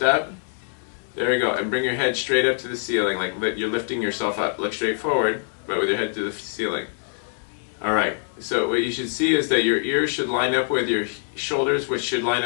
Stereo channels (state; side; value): silent; right; 63 dB below the other